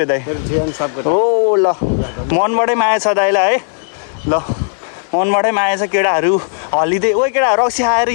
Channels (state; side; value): silent; right; digital silence